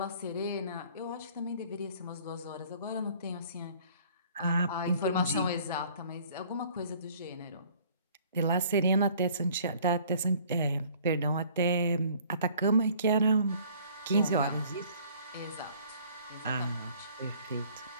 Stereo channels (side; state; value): both; inverted; correlation -0.54